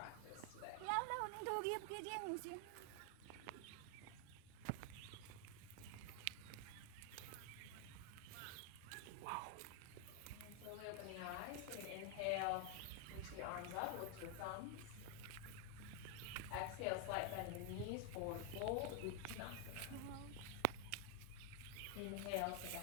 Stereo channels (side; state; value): both; different; correlation 0.00